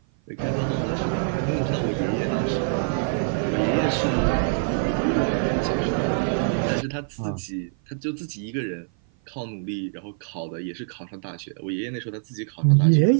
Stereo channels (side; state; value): left; silent; 55 dB below the other